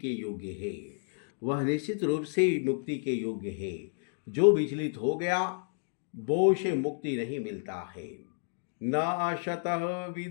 योग्य है। वह निश्चित रूप से मुक्ति के योग्य है। जो विचलित हो गया वो से मुक्ति नहीं मिलता है। न अशतः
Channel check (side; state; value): right; silent; digital silence